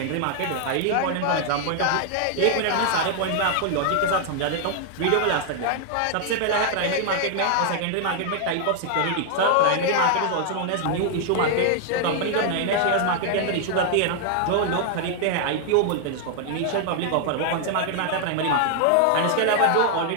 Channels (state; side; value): different; both; correlation 0.00